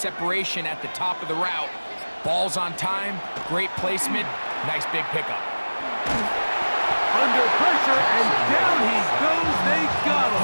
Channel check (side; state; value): both; inverted; correlation -1.00